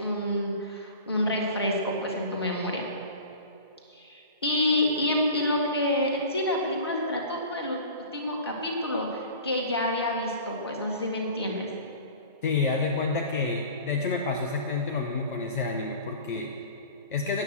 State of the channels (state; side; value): inverted; both; correlation -0.40